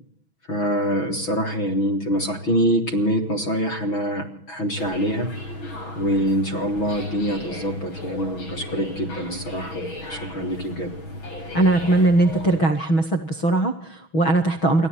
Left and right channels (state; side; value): late; right; 6.2 ms